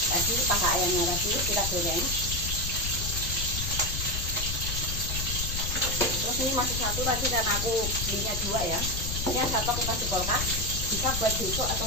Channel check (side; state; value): left; noise; rumble, 4 dB below the sound